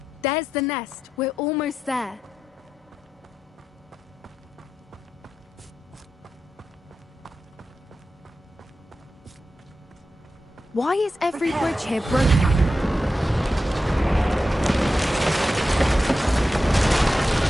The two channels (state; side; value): normal; both; correlation 0.90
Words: There's the nest. We're almost there. Why is every bridge here broken?